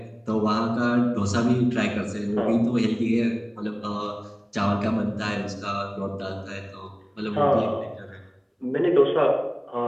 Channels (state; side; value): identical; both; correlation 1.00